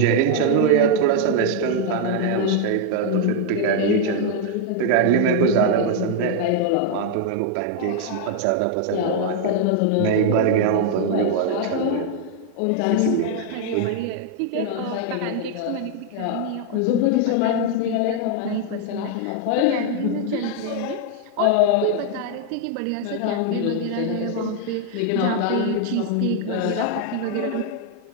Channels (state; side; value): different; both; correlation 0.00